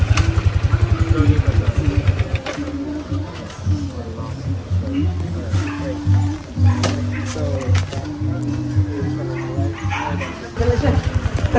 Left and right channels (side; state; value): both; identical; correlation 1.00